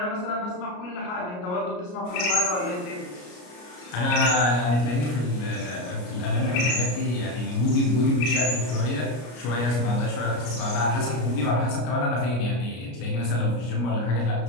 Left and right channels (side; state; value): right; late; 33 ms